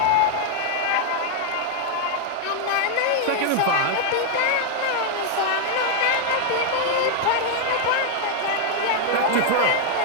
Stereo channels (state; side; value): different; both; correlation 0.00